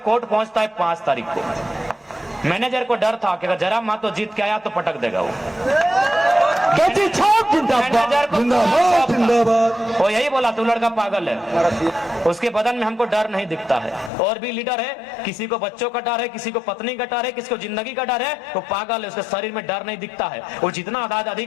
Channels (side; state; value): right; drops out; at 14.1 s